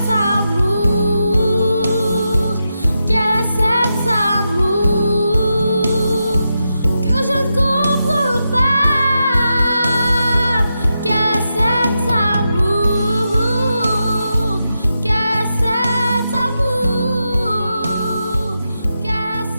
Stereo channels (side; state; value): both; inverted; correlation -0.87